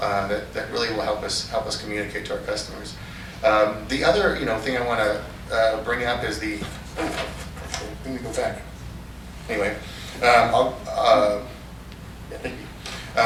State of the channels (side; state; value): both; identical; correlation 1.00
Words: really will help us communicate to our customers. The other thing I want to bring up is let me go back. Anyway,